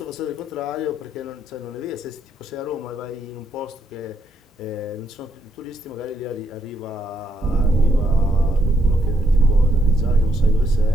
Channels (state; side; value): normal; both; correlation 0.76